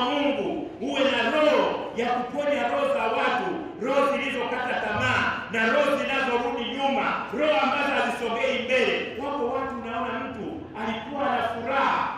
Mungu, uwe na roho ya kuponya roho za watu, roho zilizokata tamaa na roho zinazorudi nyuma, roho ambazo hazisogei mbele. Wako watu unaona mtu alikuwa na furaha,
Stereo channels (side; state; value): both; identical; correlation 1.00